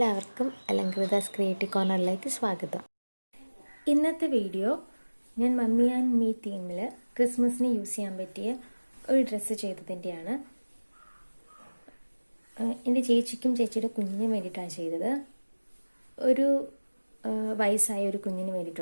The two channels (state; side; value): inverted; both; correlation -1.00